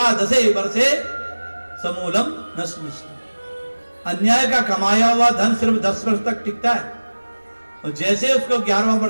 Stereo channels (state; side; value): inverted; both; correlation -1.00